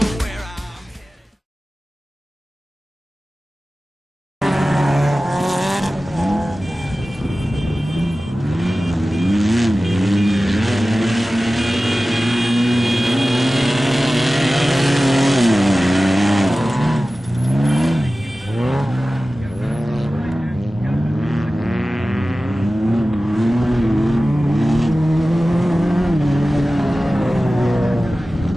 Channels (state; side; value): normal; both; correlation 0.96